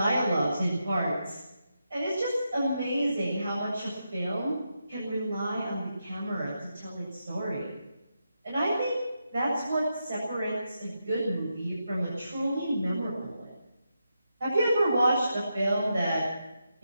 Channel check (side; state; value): both; inverted; correlation -0.86